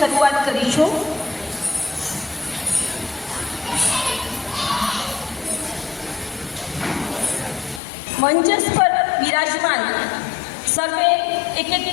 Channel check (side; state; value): right; drops out; at 7.8 s